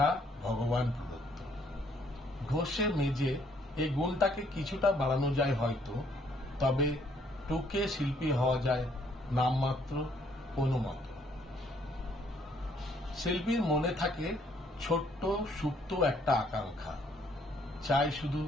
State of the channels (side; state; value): both; normal; correlation 0.66